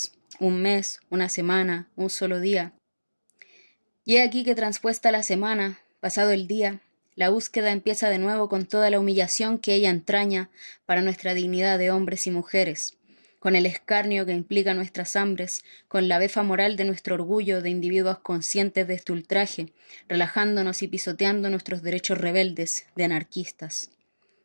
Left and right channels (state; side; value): inverted; both; correlation -1.00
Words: un mes, una semana, un solo día. Y he aquí que transpuesta la semana, pasado el día, la búsqueda empieza de nuevo con toda la humillación que ella entraña para nuestra dignidad de hombres y mujeres, con el escarnio que implica nuestras hambres, con la befa moral de nuestro orgullo de individuos conscientes de este ultraje, relajándonos y pisoteando nuestros derechos rebeldes de anarquistas.